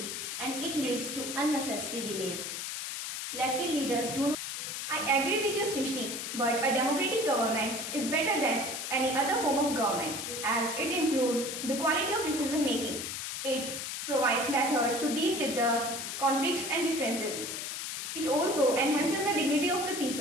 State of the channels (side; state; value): left; noise; hiss, 5 dB below the sound